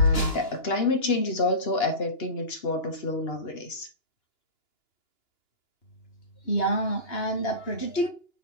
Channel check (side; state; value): right; late; 2.9 ms